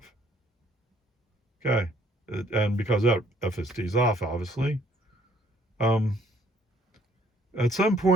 Okay. And because that FSD's off, obviously. At some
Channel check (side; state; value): both; normal; correlation 0.63